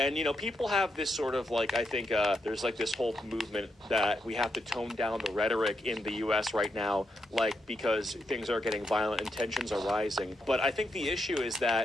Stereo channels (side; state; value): both; normal; correlation 0.83